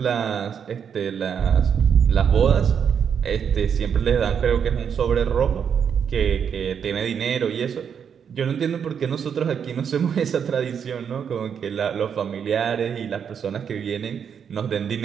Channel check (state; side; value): quieter; left; 7.5 dB